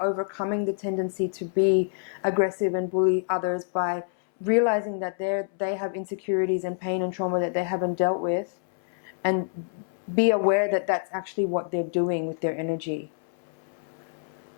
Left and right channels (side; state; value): right; silent; 60 dB below the other